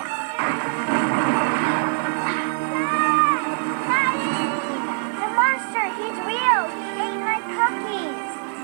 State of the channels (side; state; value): left; silent; 63 dB below the other